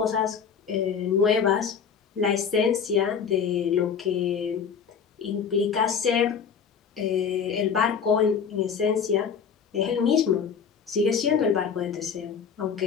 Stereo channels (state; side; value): quieter; right; 6.7 dB